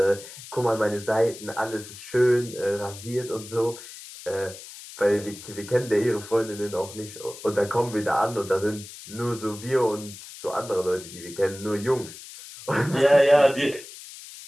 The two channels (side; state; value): left; noise; hiss, 15 dB below the sound